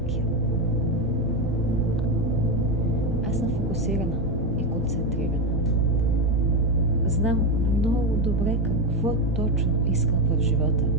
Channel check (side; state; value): both; normal; correlation 0.12